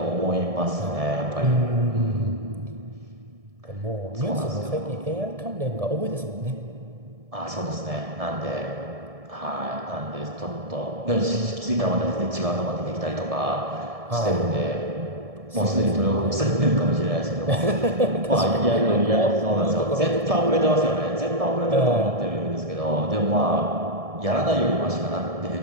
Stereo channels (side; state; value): left; late; 1.7 ms